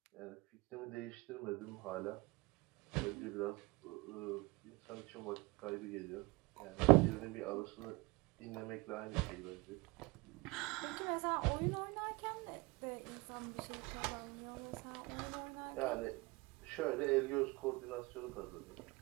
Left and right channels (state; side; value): quieter; left; 24.6 dB